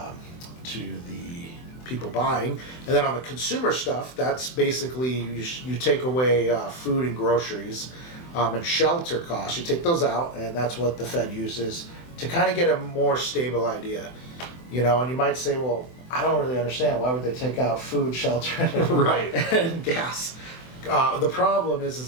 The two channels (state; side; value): late; right; 24 ms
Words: people buying. And then on the consumer stuff, that's basically you take away food and groceries and shelter costs. You take those out, and that's what the Fed uses to kind of get a more stable idea. You know, and you might say, well, I don't really understand. Why would they take out food, shelter, right, and gas? The problem is